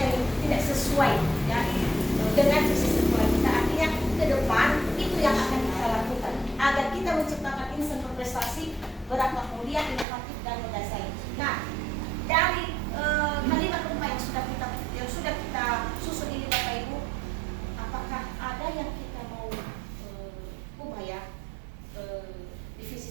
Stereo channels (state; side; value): drops out; left; at 10.1 s